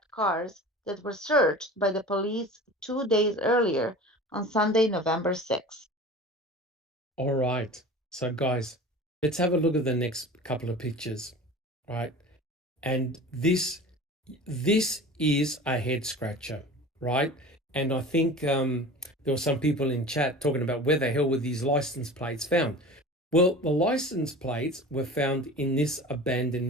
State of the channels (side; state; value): both; normal; correlation 0.38